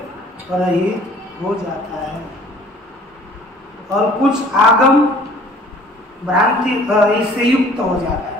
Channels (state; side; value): normal; both; correlation 0.52